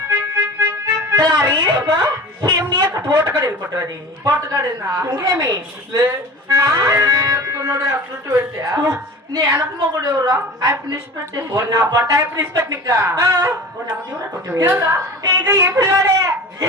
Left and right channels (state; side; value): normal; both; correlation 0.36